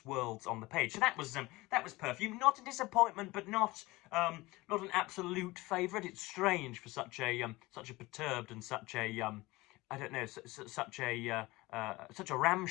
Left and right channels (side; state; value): right; quieter; 20.9 dB